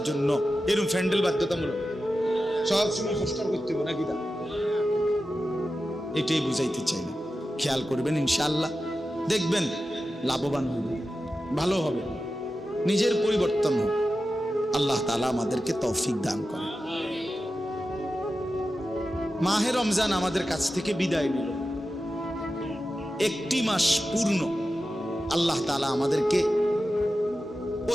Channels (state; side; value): normal; both; correlation 0.92